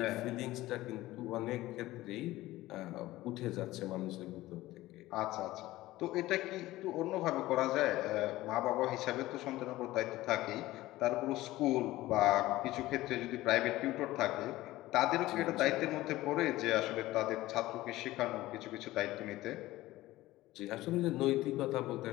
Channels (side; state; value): right; quieter; 17.1 dB